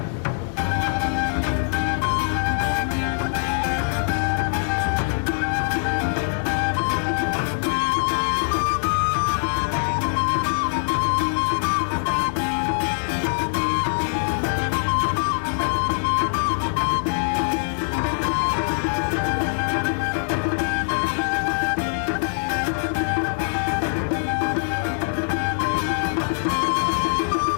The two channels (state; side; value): silent; right; 63 dB below the other